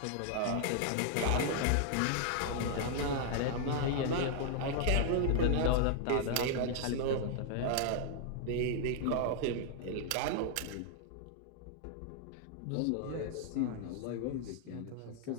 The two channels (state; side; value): different; both; correlation 0.00